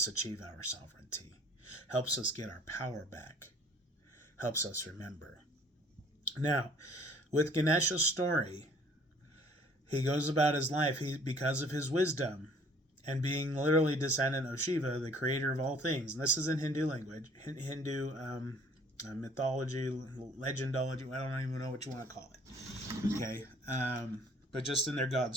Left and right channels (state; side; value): normal; both; correlation 0.55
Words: achieve our sovereignty. Helps us get our power back. Helps us remember. Now, with Ganesha's story, he goes about his life because of his wisdom and being literally descendant of Shiva, the creator of all things. And this is in Hindu language, Hindu mythology, legendology. I don't even know what you want to call it. Okay, but just in their god